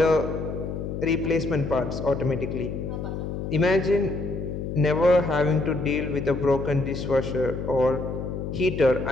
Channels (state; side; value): noise; left; hum, 5 dB below the sound